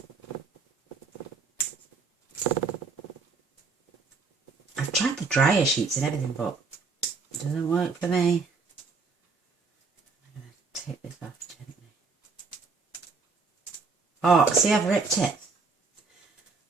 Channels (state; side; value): quieter; left; 4.4 dB